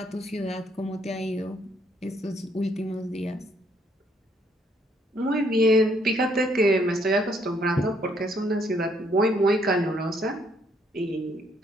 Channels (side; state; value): both; normal; correlation 0.69